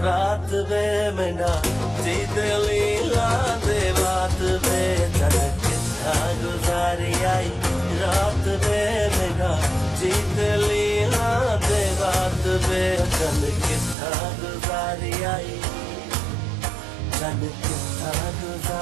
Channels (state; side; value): drops out; left; at 14.0 s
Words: रात वे मेरा जीत लीला दे बात वे चल कितना गुजारी आई रात वे मेरा जीत लीला दे बात वे चल कितना गुजारी आई चल कितना